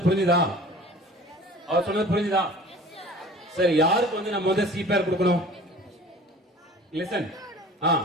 புரிஞ்சுதா? அவர் சொன்னது புரிஞ்சுதா? சரி, யாருக்கு வந்து நம்ம வந்து சிபிஆர் கொடுக்கணும்? லிசன்.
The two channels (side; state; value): both; normal; correlation 0.44